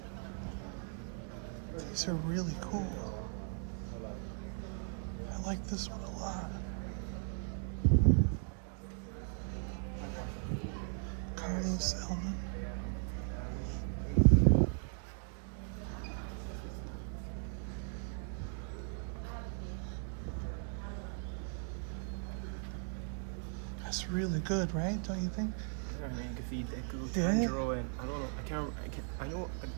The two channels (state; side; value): silent; left; 53 dB below the other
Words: These are really cool. I like this one a lot. Carlos Elman. looks really good, right? Don't you think? I mean, you can see Deku, Yeah. Tanjiro, and I don't know. I